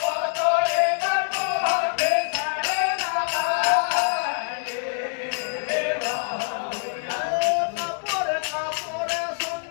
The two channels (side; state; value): right; silent; digital silence